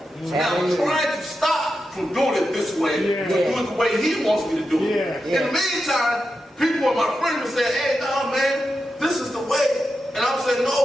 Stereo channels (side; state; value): both; normal; correlation 0.89